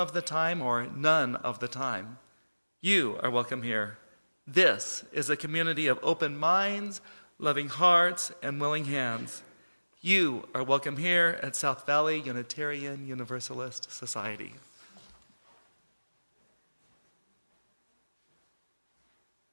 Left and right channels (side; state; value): both; inverted; correlation -1.00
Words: the time, or none of the time, you are welcome here. This is a community of open minds, loving hearts, and willing hands. You are welcome here at South Valley Unitarian Universalist Society.